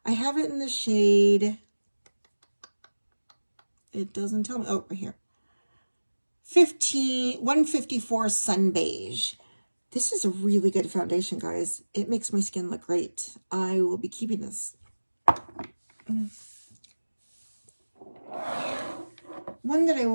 I have it in the shade It doesn't tell me. Oh, right here. 154 Sun Beige. This is a really good foundation, guys. It makes my skin look great. I will be keeping this. One that I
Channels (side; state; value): both; inverted; correlation -1.00